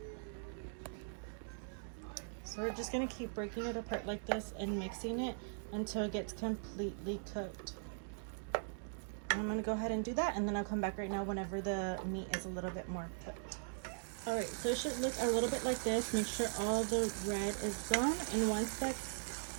So we're just going to keep breaking it apart like this and mixing it until it gets completely cooked. And I'm going to go ahead and do that, and then I'll come back right now whenever the meat is a little bit more cooked. Alright, so it should look a little bit like this. Make sure all the red is gone, and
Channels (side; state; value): left; silent; digital silence